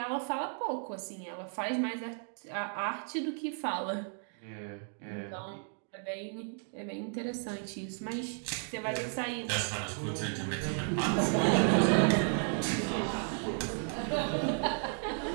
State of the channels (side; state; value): left; silent; 55 dB below the other